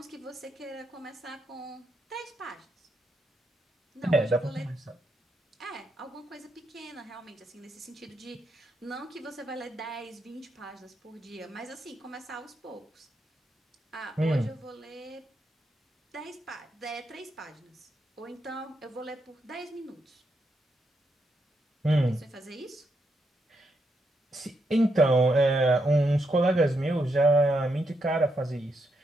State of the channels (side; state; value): both; normal; correlation 0.81